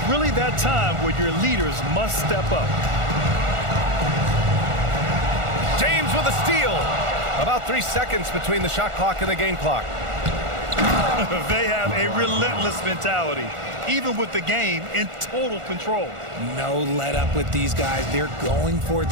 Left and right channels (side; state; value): left; late; 1.4 ms